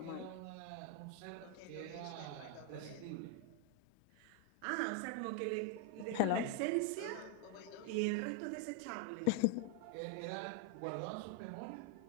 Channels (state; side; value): different; both; correlation 0.00